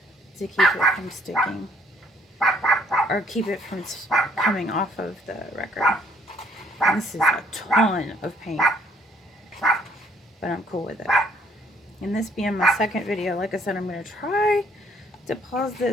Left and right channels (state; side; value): normal; both; correlation 0.64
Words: to keep it from sticking, or keep it from coming off of the record. And this is a ton of paint, but I'm cool with it. And this being my second video, like I said, I'm going to try to pause